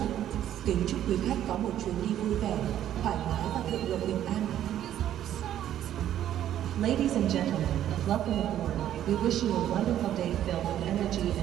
Kính chúc quý khách có một chuyến đi vui vẻ, thoải mái và thượng lộ bình an. Ladies and gentlemen, welcome aboard. We wish you a wonderful day filled with energy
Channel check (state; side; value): quieter; left; 11.4 dB